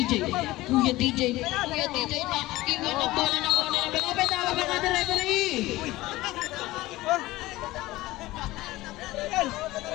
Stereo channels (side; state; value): right; quieter; 18.3 dB